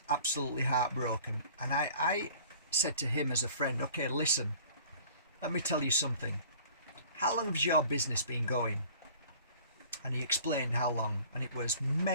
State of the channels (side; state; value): both; inverted; correlation -0.49